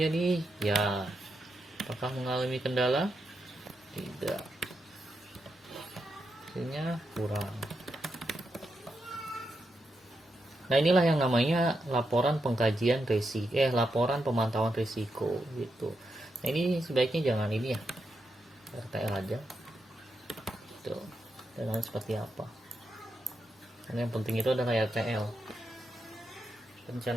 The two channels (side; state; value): both; normal; correlation 0.85